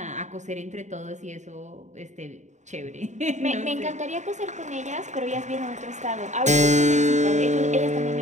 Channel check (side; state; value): left; late; 0.34 ms